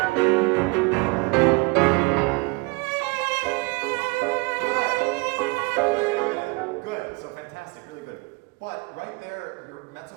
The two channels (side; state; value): left; quieter; 27.0 dB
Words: But right there, your mezzo